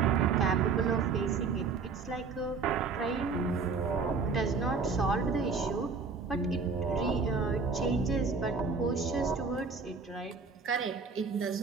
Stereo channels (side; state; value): left; quieter; 4.8 dB